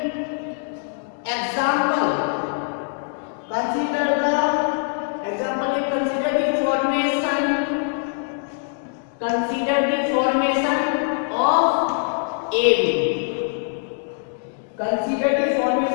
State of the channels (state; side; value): silent; right; digital silence